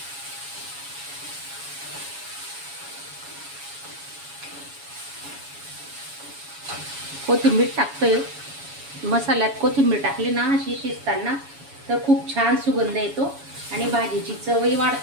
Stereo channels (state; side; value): late; left; 7.1 ms